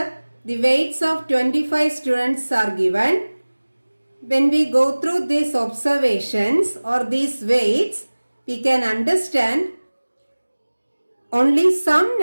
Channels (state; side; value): inverted; both; correlation -1.00